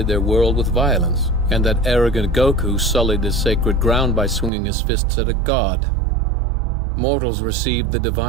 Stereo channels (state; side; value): drops out; left; at 4.5 s